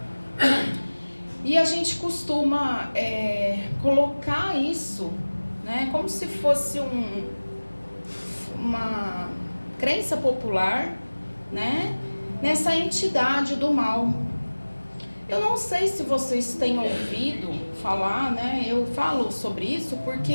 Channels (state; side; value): inverted; both; correlation -1.00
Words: E a gente costuma colocar isso, né, como se fosse uma crença popular, né, nessa entidade do mal. Eu não sei se vocês têm ouvido falar, né, eu falo sobre isso